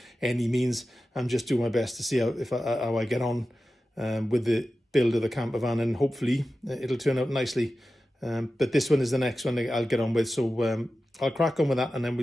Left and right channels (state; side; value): normal; both; correlation 0.94